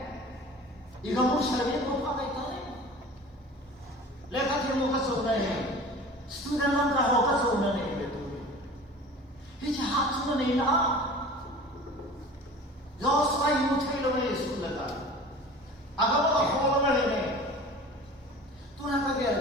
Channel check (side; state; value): both; normal; correlation 0.40